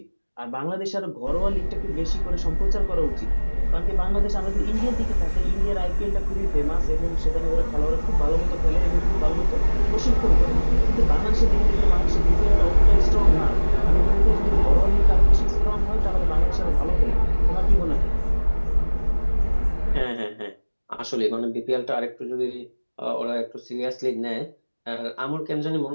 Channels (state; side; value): inverted; both; correlation -1.00